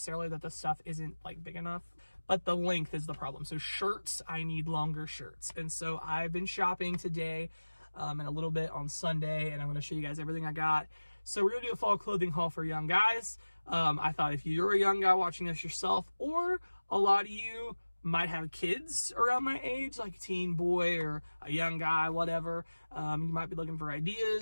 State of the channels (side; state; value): both; inverted; correlation -1.00